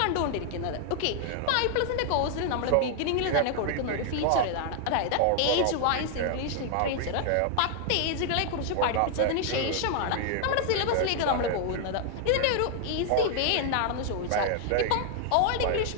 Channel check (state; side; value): different; both; correlation 0.00